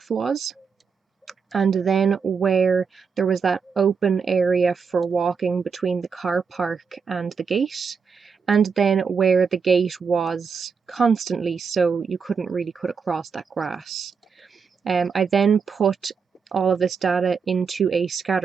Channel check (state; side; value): quieter; left; 5.8 dB